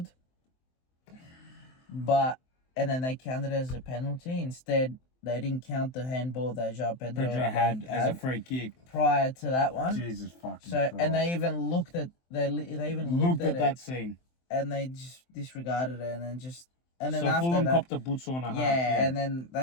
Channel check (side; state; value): right; late; 23 ms